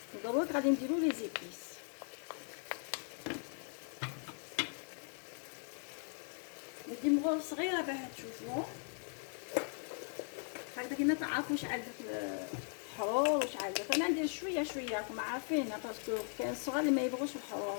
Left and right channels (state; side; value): silent; right; 52 dB below the other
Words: ودروك غادي نديرو لي زيبيس. ندي مغول صغيره باه تشوفوا هكذا كيما تعرفوا واش عندك الحرور واش عندك. انا ندير شويه شويه راكم عارفين باسكو كاين الصغار اللي ما يبغوش